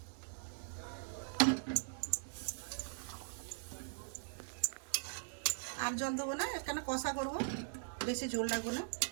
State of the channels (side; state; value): left; silent; digital silence